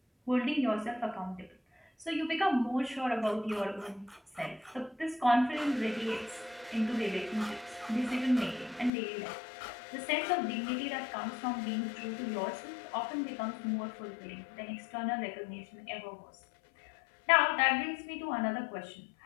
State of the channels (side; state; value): right; drops out; at 8.9 s